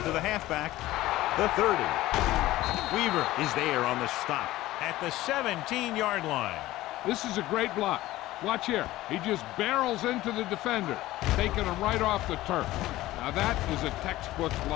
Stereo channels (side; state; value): right; quieter; 16.5 dB